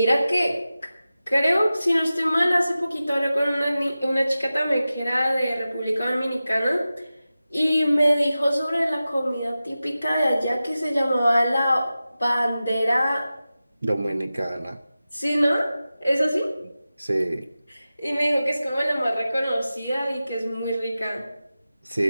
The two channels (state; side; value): inverted; both; correlation -0.94